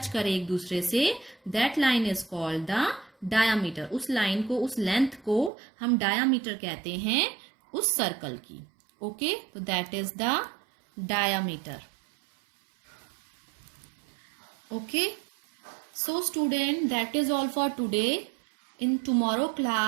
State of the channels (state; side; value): drops out; left; at 5.5 s